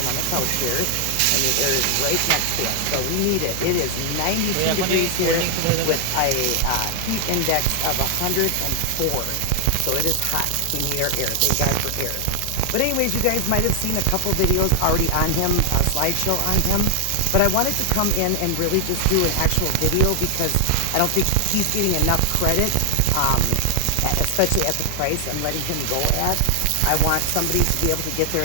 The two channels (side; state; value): both; different; correlation 0.00